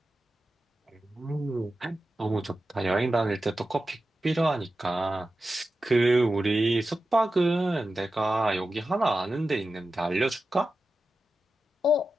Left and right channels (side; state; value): both; normal; correlation 0.92